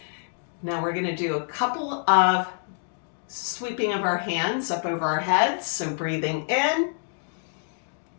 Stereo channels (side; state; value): right; silent; digital silence